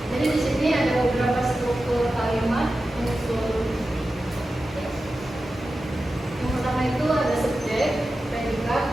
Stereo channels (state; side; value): normal; both; correlation 0.93